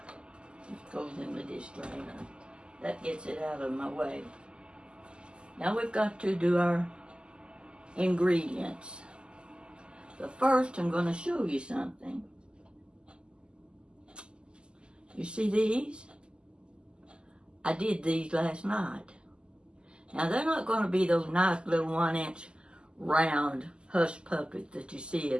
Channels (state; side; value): late; left; 0.049 ms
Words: goes in the dish drainer. That gets it out of my way. Now we've got to do our ingredients. But first, I'm going to show you something. You see these? I did these last night. Now, they're not going to be those nice little 1-inch round Hush Puppies that you see